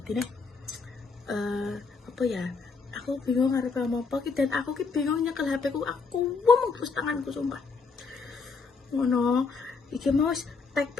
nih apa ya? Aku bingung harus ngomong apa, dan aku bingung nyekel HP ku, aku ngomong terus tanganku sumpah. Ngono, iki mau tag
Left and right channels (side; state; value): right; quieter; 4.6 dB